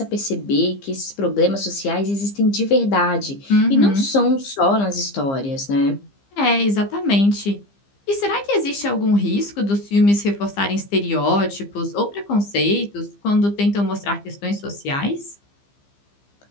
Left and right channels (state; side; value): late; right; 15 ms